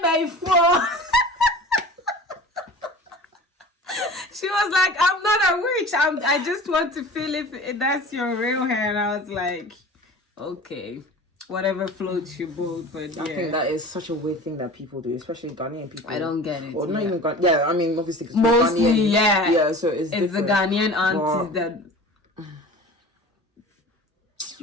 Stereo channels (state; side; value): normal; both; correlation 0.39